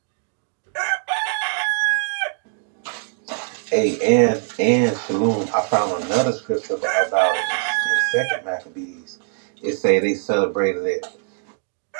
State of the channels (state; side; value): silent; left; 59 dB below the other